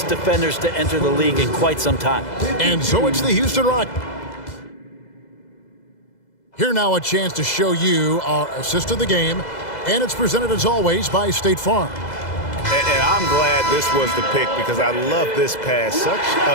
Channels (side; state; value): right; late; 2.0 ms